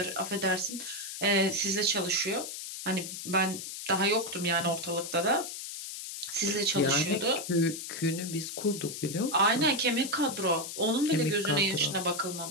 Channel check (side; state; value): left; noise; hiss, 8 dB below the sound